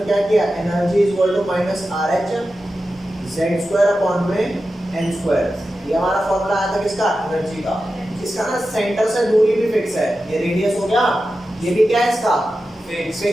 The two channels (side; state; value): both; normal; correlation 0.92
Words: क्या किया? Energy is equal to minus RH z² upon में n²। ये हमारा फॉर्मूला आया था किसका? एनर्जी का। इसका ना सेंटर से दूरी भी फिक्स है। ये रेडियस हो गया, ये भी क्या है इसका?